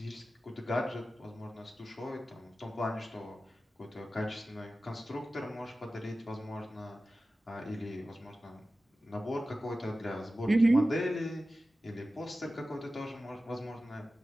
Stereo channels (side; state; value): both; normal; correlation 0.94